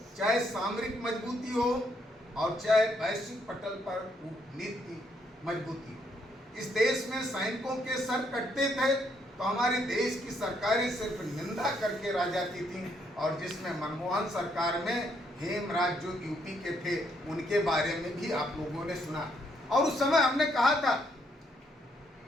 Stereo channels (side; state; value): both; normal; correlation 0.73